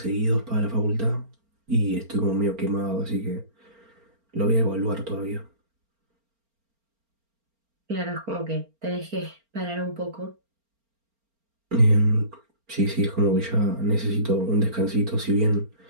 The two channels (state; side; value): late; left; 4.4 ms